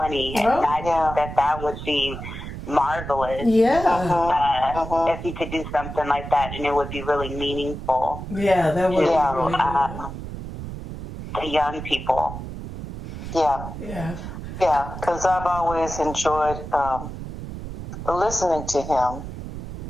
And I think that would be marvelous. If he could do something like that, and it would be really meaningful. Yeah, that would be really good. The young people. Yeah, because I've always enjoyed listening to him.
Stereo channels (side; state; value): right; noise; rumble, 9 dB below the sound